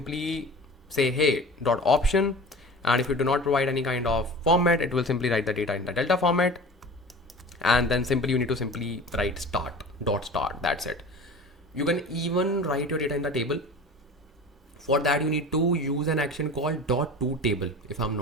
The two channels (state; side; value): normal; both; correlation 0.38